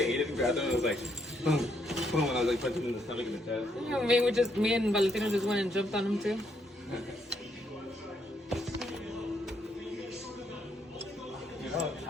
it and grabbed it and it was like, boom, boom, and I was like punching him in the stomach and the chest. You know, me and Valentino just went and jumped on him too. Dude, I'm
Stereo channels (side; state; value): both; normal; correlation 0.74